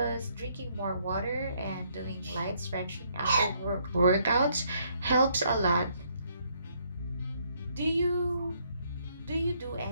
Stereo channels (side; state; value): both; inverted; correlation -0.69